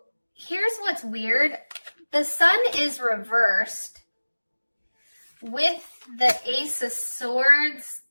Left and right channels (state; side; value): inverted; both; correlation -1.00